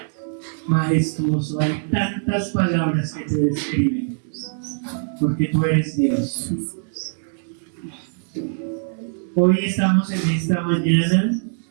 majestuoso. Hay tantas palabras que te describen, porque tú eres Dios. Hoy estamos en esta mañana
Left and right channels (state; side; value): silent; left; digital silence